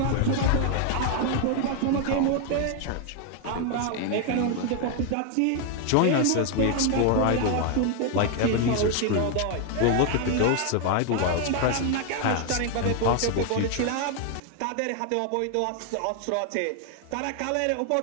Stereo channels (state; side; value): different; both; correlation 0.00